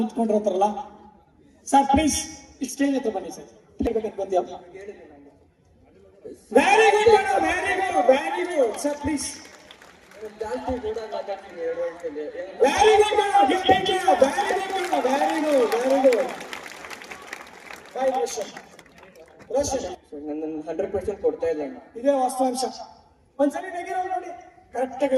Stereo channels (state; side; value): identical; both; correlation 1.00